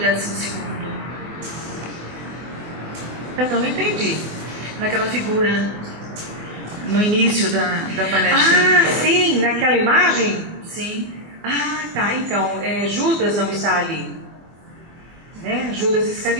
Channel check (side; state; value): left; late; 24 ms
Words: Eu não entendi. Naquela figura, no início da palestra. Ah, sim, naquela imagem? Sim. Ah, tá, então, Judas não está ali, né? Judas